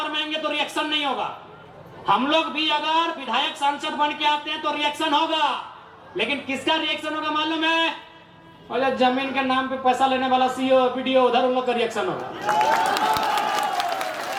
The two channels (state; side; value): identical; both; correlation 1.00